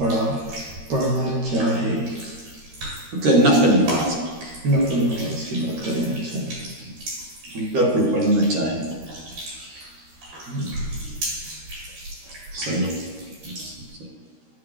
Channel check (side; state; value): left; late; 13 ms